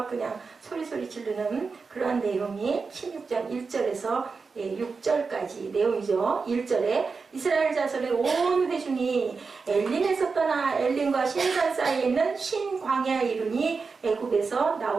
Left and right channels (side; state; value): left; quieter; 4.7 dB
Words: 그냥 소리소리 지르는 그러한 내용이 16장 1절에서 6절까지 내용이죠. 1절에 이스라엘 자손의 온 회중이 엘림에서 떠나 엘림과 신산 사이에 있는 신광야에 이르니 애굽에서